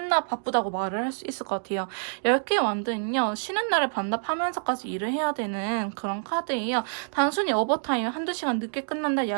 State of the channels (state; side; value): silent; left; 60 dB below the other